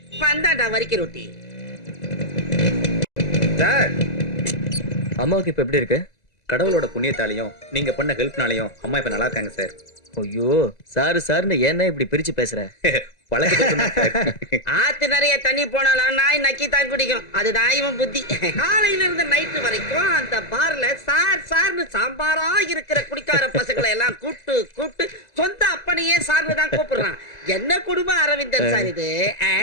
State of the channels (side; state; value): right; late; 1.9 ms